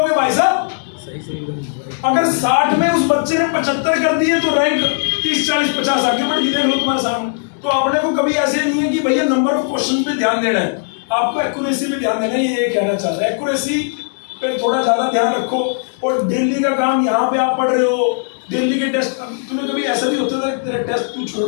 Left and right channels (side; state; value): right; silent; digital silence